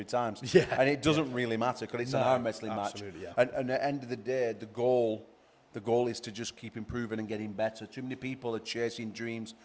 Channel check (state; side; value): identical; both; correlation 1.00